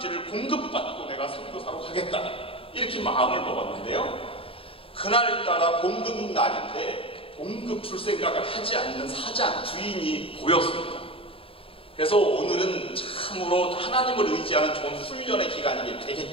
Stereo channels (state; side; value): late; right; 0.27 ms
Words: 공급받고 내가 선교사로 가겠다, 이렇게 마음을 먹었는데요. 그날따라 공급 날인데 공급 줄 생각을 하지 않는 사장, 주인이 보였습니다. 그래서 오늘은 참으로 하나님을 의지하는 좋은 훈련의 기간이